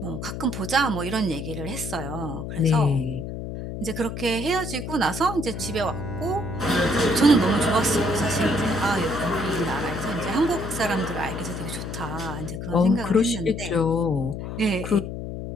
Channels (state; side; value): noise; left; hum, 6 dB below the sound